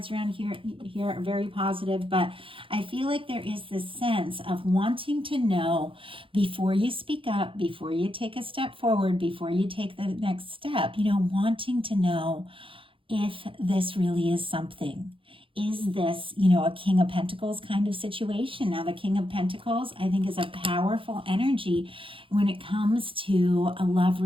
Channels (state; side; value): late; left; 0.25 ms